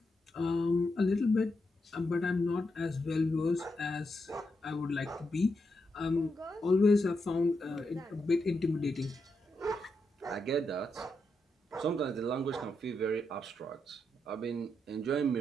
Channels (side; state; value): both; normal; correlation 0.84